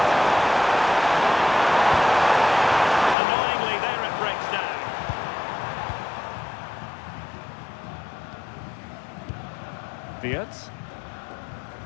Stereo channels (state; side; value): drops out; right; at 3.2 s